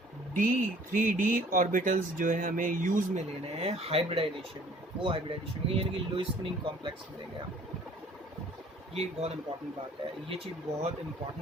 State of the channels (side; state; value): both; normal; correlation 0.54